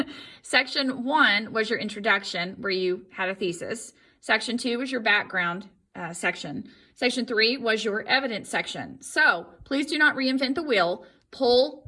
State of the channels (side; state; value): both; identical; correlation 1.00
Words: section 1 was your introduction where you had a thesis. Section 2 was your background section. Section 3 was your evidence section. So please do not reinvent the wheel.